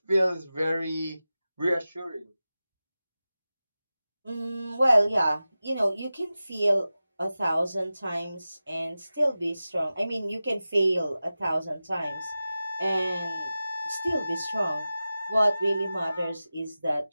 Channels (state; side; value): inverted; both; correlation -0.95